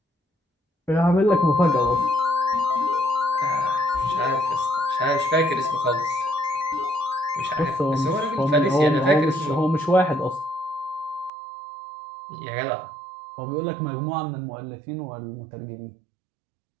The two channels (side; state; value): left; drops out; at 11.3 s